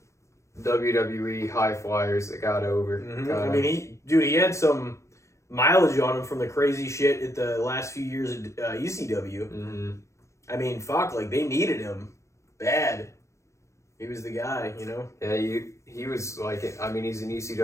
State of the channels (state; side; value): late; right; 0.14 ms